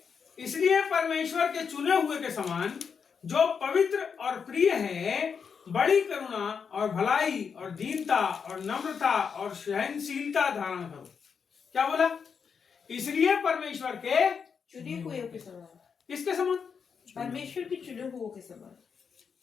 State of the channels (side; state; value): right; quieter; 6.3 dB